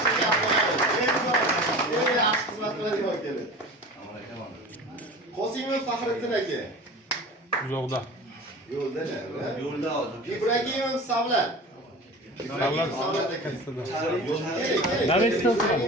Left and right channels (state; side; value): normal; both; correlation 0.36